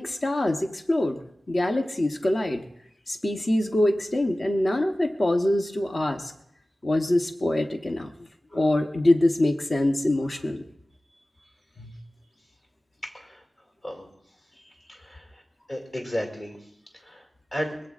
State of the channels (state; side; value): normal; both; correlation 0.97